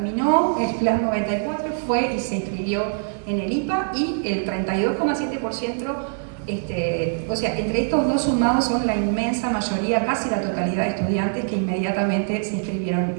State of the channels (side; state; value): left; silent; digital silence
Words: el Plan 94, fue y se inscribió en el IPA, y el 32,7%, o sea, entre estos dos sumados son la inmensa mayoría, casi la totalidad de estudiantes que inmediatamente se inscribieron